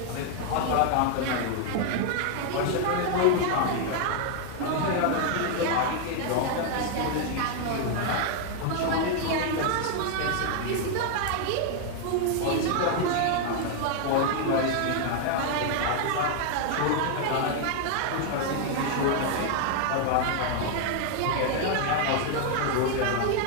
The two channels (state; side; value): different; both; correlation 0.00